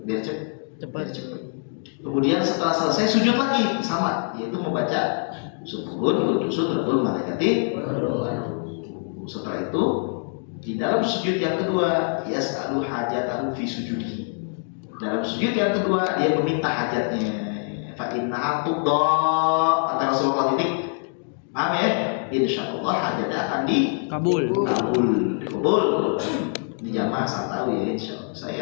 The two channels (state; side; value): silent; right; 56 dB below the other